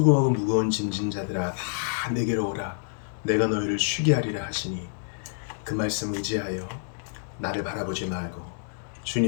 무거운 짐진 자들아 다 내게로 오라 내가 너희를 쉬게 하리라 하시니 그 말씀 의지하여 나를 바라보지 말고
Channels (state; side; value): silent; right; digital silence